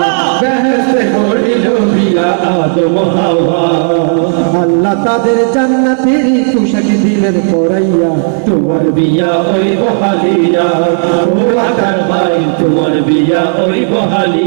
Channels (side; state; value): left; silent; digital silence